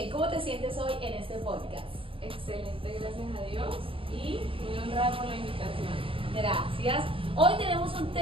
¿Cómo te sientes hoy en este podcast? Excelente, gracias a Dios y muy honrada por la invitación. Gracias. Hoy tenemos un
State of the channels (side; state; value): left; late; 0.26 ms